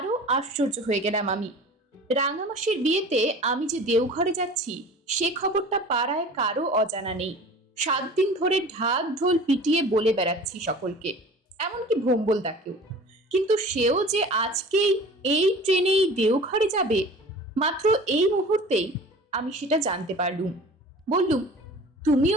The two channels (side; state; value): both; normal; correlation 0.42